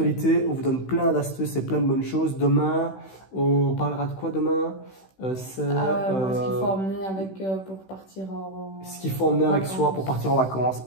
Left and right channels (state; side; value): late; right; 16 ms